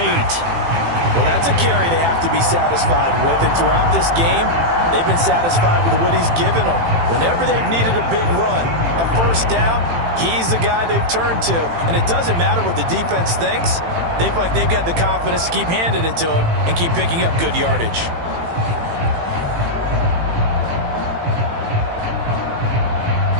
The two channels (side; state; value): left; late; 18 ms